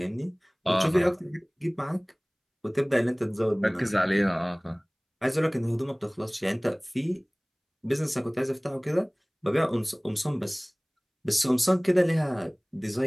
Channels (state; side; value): identical; both; correlation 1.00